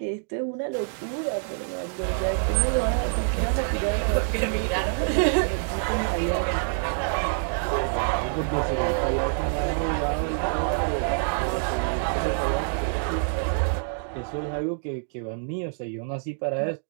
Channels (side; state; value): left; silent; digital silence